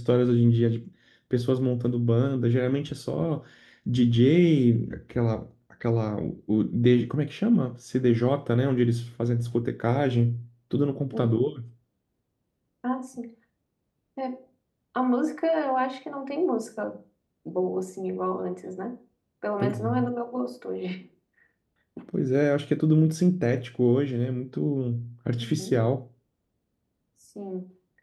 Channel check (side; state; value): both; identical; correlation 1.00